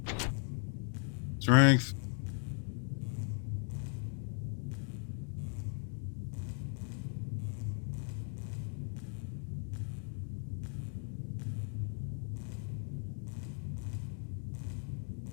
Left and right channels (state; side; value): silent; right; 53 dB below the other